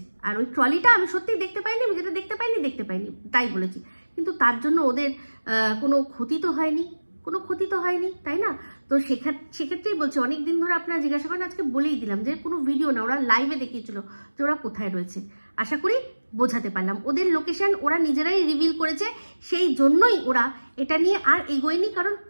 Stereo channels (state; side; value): inverted; both; correlation -1.00